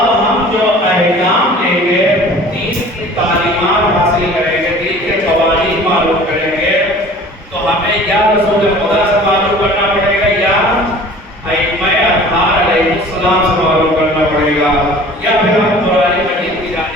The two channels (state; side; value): normal; both; correlation 0.46